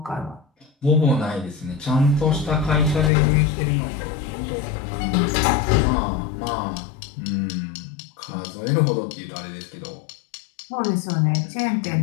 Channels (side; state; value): right; drops out; at 3.1 s